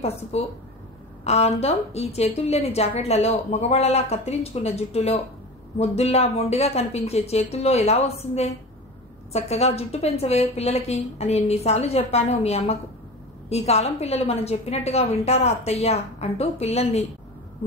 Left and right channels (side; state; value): both; normal; correlation 0.31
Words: పసుపు. ఆ అందం ఈ చేతుల్లేని జాకెట్లలో, మగవాళ్లలా కత్తిరించుకున్న జుట్టులో, ముద్దుల్లా మొండిగా కనిపించే చేతుల్లో ఎలా వస్తుందే? చక్కగా జుట్టు పెంచవే పిల్లలకి అని ఎన్నిసార్లు చెప్పాను మీ అమ్మకు. ఈ కాలం పిల్లలు మనం చెప్పినట్టుగా వింటారా అత్తయ్యా అంటూ పిల్లల్ని